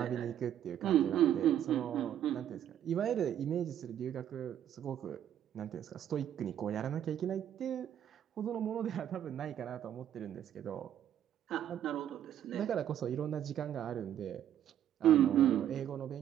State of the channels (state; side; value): quieter; left; 10.5 dB